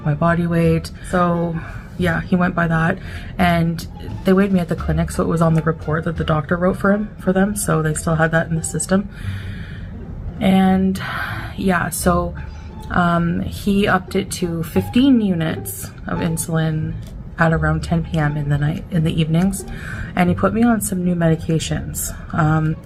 my body weight. So yeah, he went by that, and they weighed me at the clinic, so it was on the report that the doctor wrote for them. So they still had that in the system. And yeah, so he upped it to 15 units of insulin at around 10 p.m. in the evenings, and he put me on some new medications.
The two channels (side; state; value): both; identical; correlation 1.00